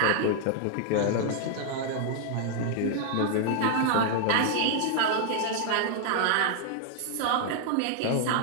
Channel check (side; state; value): both; different; correlation 0.00